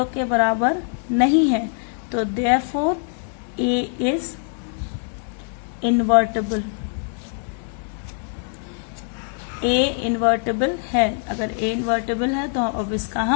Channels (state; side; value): silent; right; 56 dB below the other